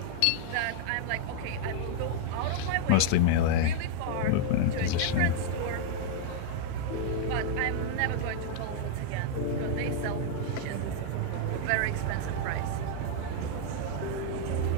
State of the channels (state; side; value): different; both; correlation -0.01